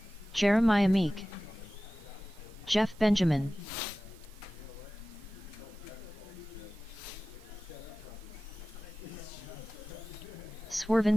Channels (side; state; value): both; normal; correlation 0.96